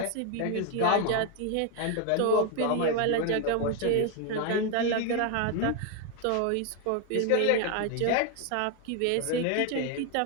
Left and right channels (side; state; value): both; different; correlation 0.01